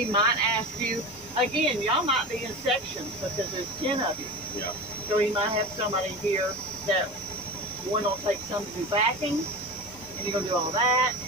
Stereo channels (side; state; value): both; normal; correlation 0.29